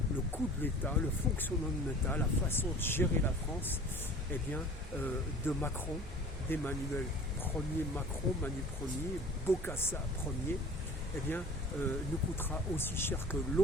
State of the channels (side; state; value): both; normal; correlation 0.43